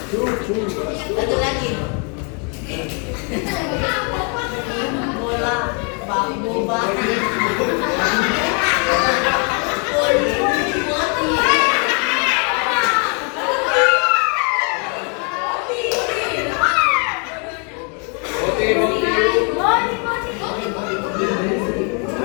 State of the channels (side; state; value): right; quieter; 37.3 dB